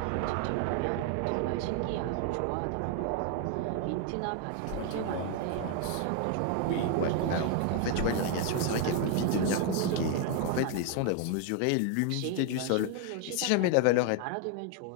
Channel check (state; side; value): different; both; correlation 0.01